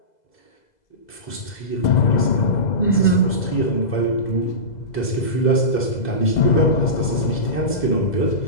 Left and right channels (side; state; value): right; late; 2.0 ms